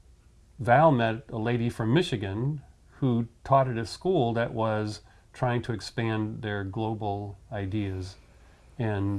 Val met a lady from Michigan who taught at a school that was trying to expand their global ideas.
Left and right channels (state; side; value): identical; both; correlation 1.00